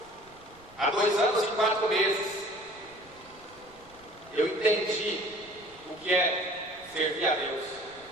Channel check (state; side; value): noise; right; rumble, 26 dB below the sound